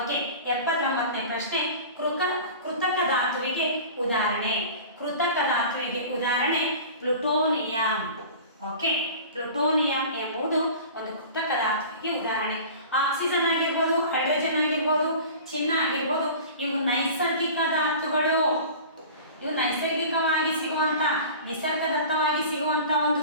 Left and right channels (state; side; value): inverted; both; correlation -0.39